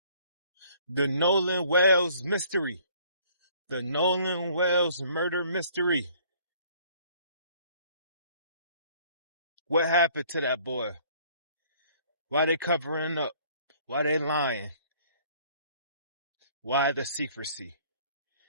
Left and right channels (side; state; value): both; inverted; correlation -0.57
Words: The Nolan Wells mystery. The Nolan Wells murder mystery. What happened to that boy? Why they covering up? Why they lying? Why the secrecy?